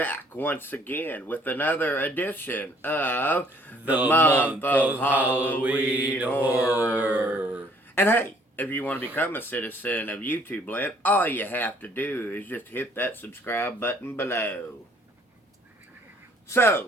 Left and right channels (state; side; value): normal; both; correlation 0.61